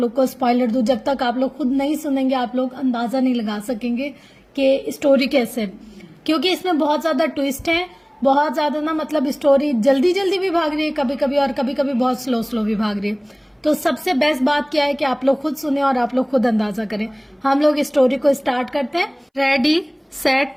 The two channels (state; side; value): identical; both; correlation 1.00